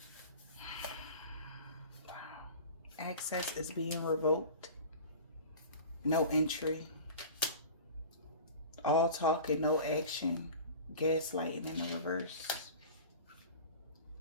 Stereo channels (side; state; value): both; inverted; correlation -0.37